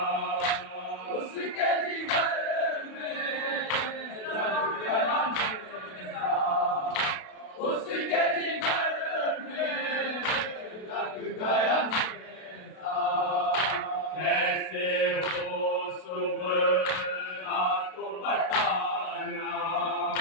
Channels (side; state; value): right; late; 32 ms